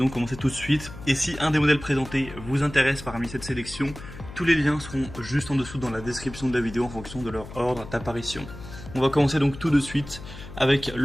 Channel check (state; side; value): noise; left; hum, 14 dB below the sound